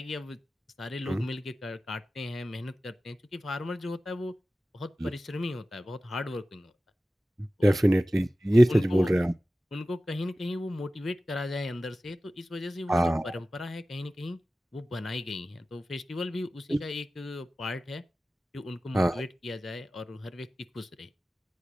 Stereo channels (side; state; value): both; normal; correlation 0.95